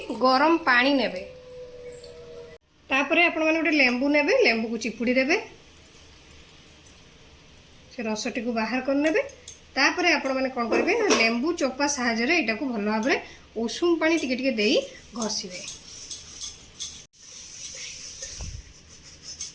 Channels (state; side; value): identical; both; correlation 1.00